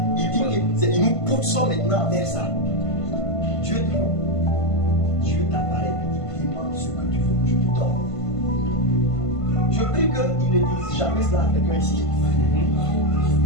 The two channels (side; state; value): right; late; 1.5 ms